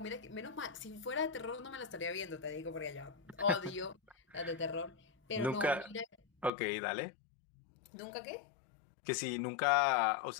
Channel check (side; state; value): right; drops out; at 6.5 s